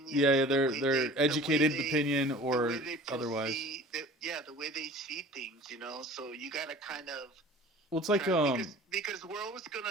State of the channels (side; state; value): both; normal; correlation 0.44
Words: Yeah, they're educated opinion or otherwise. The way they see things, so you got to kind of. Well, it's like because we're always